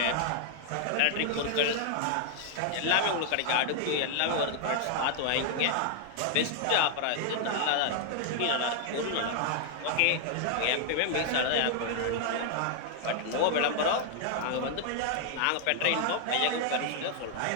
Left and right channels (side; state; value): both; different; correlation -0.01